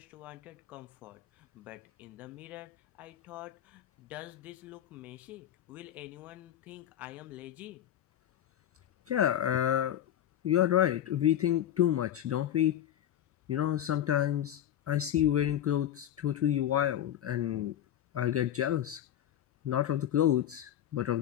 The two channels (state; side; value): quieter; right; 11.2 dB